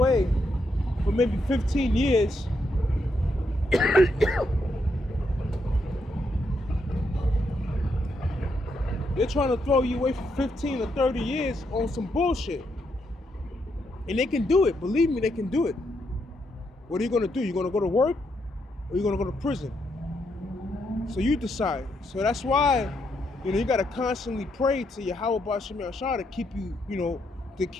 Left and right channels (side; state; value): both; normal; correlation 0.79